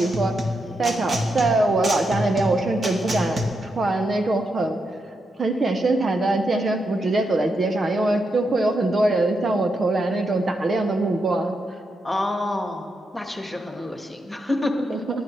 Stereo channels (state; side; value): normal; both; correlation 0.84